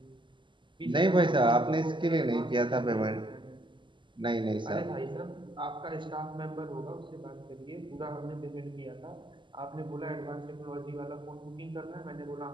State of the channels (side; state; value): left; late; 0.24 ms